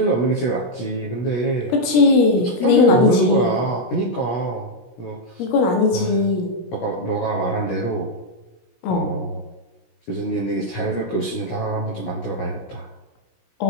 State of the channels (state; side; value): late; right; 17 ms